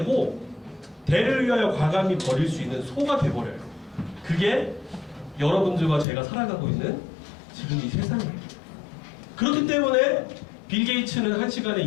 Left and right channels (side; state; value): right; drops out; at 6.1 s